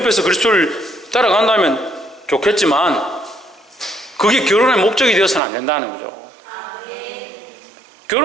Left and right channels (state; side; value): drops out; left; at 5.4 s